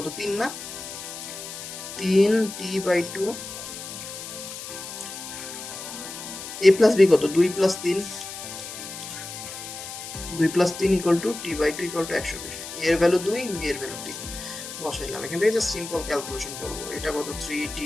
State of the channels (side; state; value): left; noise; hiss, 10 dB below the sound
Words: 3 না? 3 T/2, A + B কত? 2 + 3, 2 + 3 = T/2 = 120। এর ভ্যালু 2, B এর ভ্যালু 3 বসাইলাম। এখান থেকে জাস্ট সিম্পল ক্যালকুলেশন করব। এটা কত?